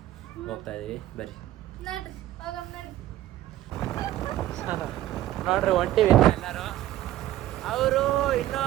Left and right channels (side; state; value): left; quieter; 14.2 dB